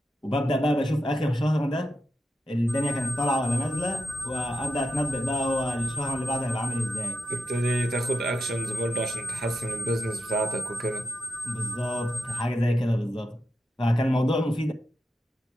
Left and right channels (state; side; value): normal; both; correlation 0.88